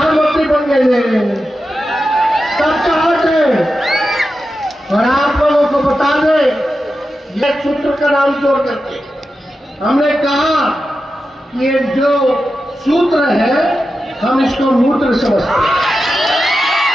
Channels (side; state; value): both; normal; correlation 0.91